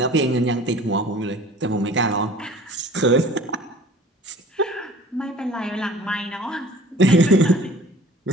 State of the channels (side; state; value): both; normal; correlation 0.47